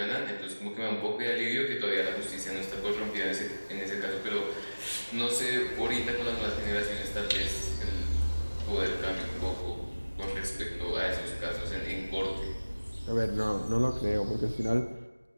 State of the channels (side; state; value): both; inverted; correlation -1.00